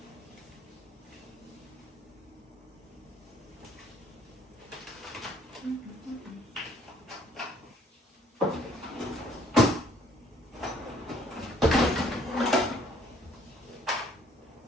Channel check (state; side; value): normal; both; correlation 0.62